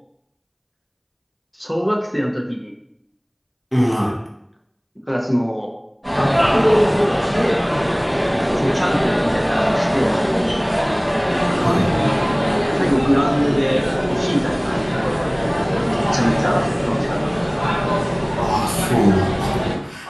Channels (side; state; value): both; identical; correlation 1.00